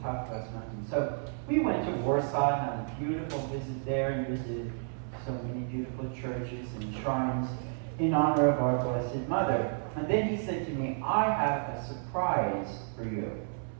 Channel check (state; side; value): silent; left; 57 dB below the other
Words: talked about nothing. So we went to Warsaw and had a beautiful visit there, and visited so many beautiful churches and shrines in honor of our Blessed Mother. And then he said to me, "I have a surprise for you."